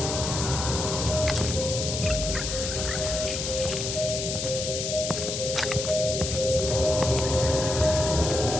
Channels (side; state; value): left; noise; hiss, 3 dB below the sound